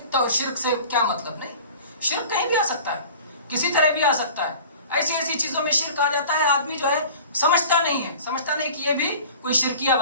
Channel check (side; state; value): both; inverted; correlation -0.43